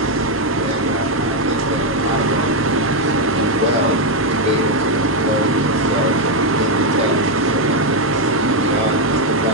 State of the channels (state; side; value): normal; both; correlation 0.03